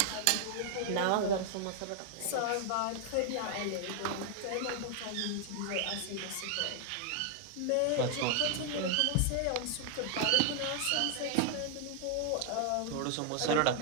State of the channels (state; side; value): different; both; correlation 0.00